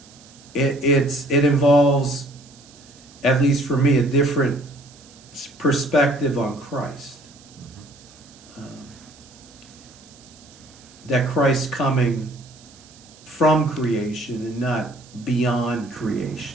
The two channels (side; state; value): right; noise; hiss, 24 dB below the sound